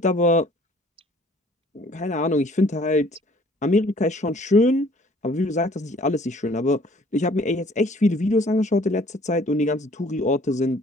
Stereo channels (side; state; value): both; normal; correlation 0.56